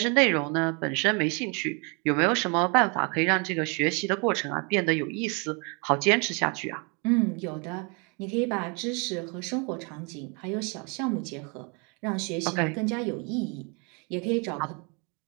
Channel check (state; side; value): quieter; left; 33.0 dB